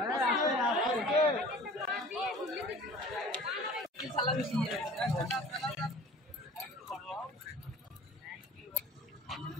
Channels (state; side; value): normal; both; correlation 0.44